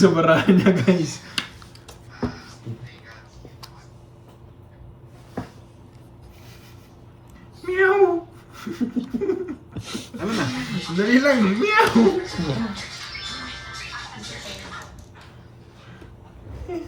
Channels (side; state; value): both; identical; correlation 1.00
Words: barahan niya guys. Meow! Ano na? Dali lang, meow!